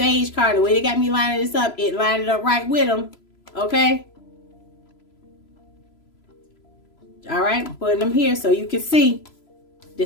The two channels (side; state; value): right; late; 3.0 ms